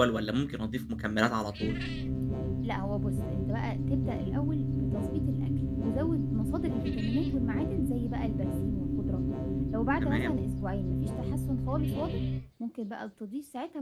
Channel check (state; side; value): identical; both; correlation 1.00